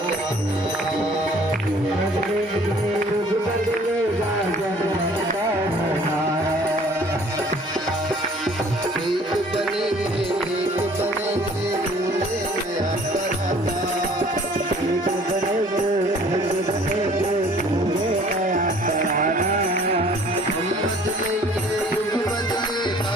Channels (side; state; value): both; normal; correlation 0.54